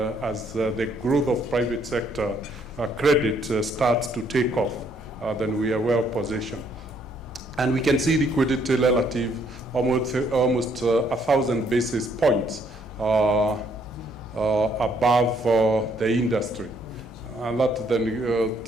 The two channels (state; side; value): normal; both; correlation 0.68